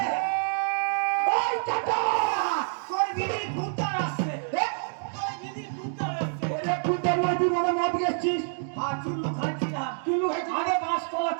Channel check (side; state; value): left; silent; digital silence